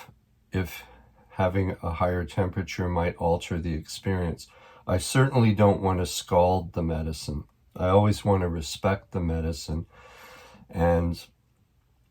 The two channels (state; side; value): identical; both; correlation 1.00